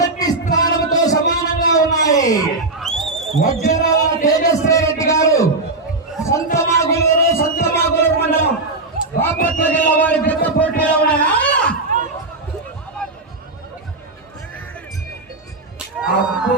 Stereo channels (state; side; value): quieter; left; 3.2 dB